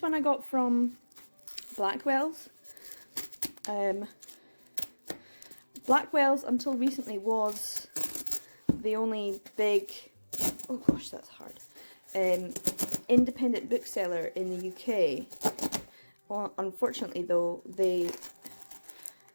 one I got from Blackwell's. Blackwell's until recently was the only big, oh gosh, that's hard, independent bookseller in the UK. Well, unfortunately though, they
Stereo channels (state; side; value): inverted; both; correlation -1.00